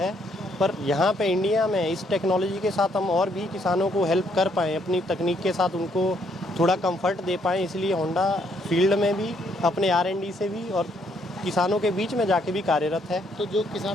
पर यहाँ पे इंडिया में इस टेक्नोलॉजी के साथ हम और भी किसानों को हेल्प कर पाएँ, अपनी तकनीक के साथ उनको थोड़ा कंफर्ट दे पाएँ, इसलिए होंडा फील्ड में भी अपने R&D से भी और किसानों के बीच में जाके भी कार्यरत है। तो जो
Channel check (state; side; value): normal; both; correlation 0.71